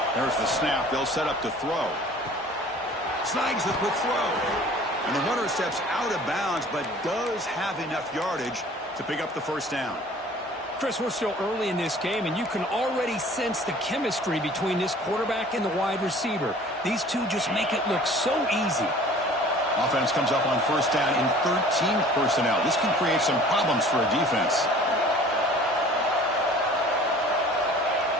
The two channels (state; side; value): normal; both; correlation 0.48